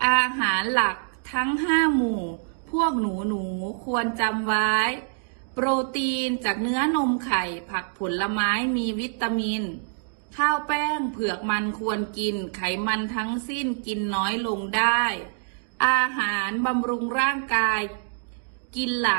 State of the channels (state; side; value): silent; left; digital silence